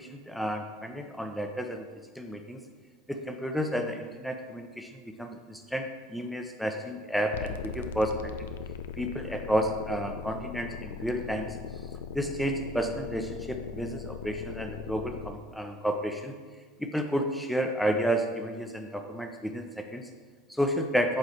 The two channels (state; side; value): normal; both; correlation 0.59